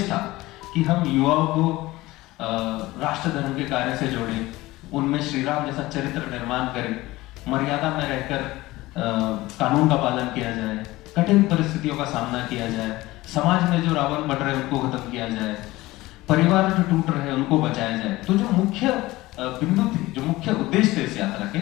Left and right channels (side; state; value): right; quieter; 18.8 dB